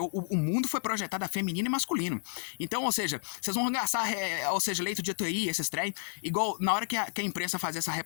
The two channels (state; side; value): silent; right; digital silence